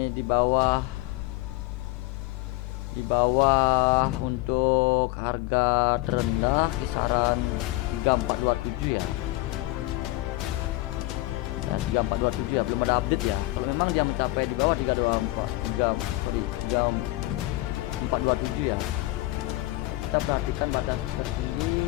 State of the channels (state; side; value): quieter; right; 19.6 dB